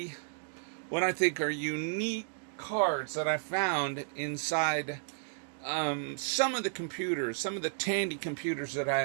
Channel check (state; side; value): silent; left; digital silence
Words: what I think are unique cards that I found inside some of the computers, some of the Tandy computers that I